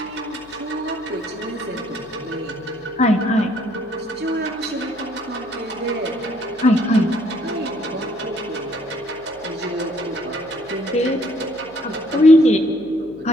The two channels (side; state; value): left; noise; hum, 27 dB below the sound